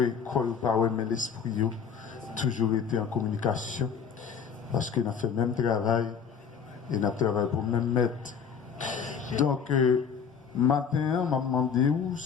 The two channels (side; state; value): right; quieter; 6.8 dB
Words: qu'on pas ouais, mais l'esprit a toujours été en communication. Parce qu'il a fait le même travail et il a travaillé pour le même maître. Donc, matin, m'a demandé où,